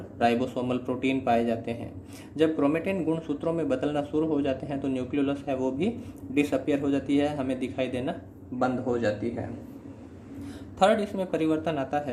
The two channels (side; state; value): both; identical; correlation 1.00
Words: राइबोसोमल प्रोटीन पाए जाते हैं। जब क्रोमेटिन गुणसूत्रों में बदलना शुरू हो जाते हैं तो न्यूक्लियोलस है वो भी डिसअपियर हो जाती है, हमें दिखाई देना बंद हो जाती है। थर्ड, इसमें परिवर्तन आता